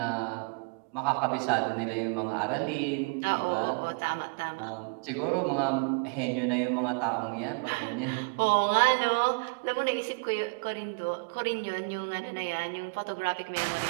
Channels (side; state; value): left; quieter; 33.3 dB